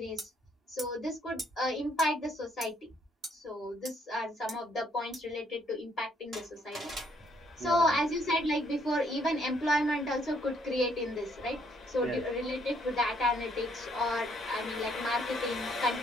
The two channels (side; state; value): both; normal; correlation 0.68